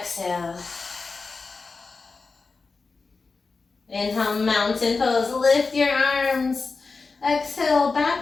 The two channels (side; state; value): right; quieter; 4.3 dB